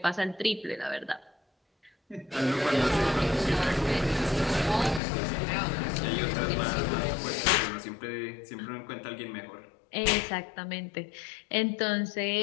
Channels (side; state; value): right; drops out; at 5.0 s